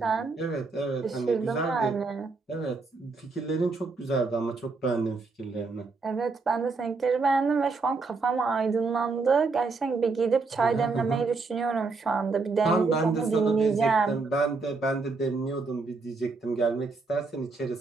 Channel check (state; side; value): quieter; left; 4.1 dB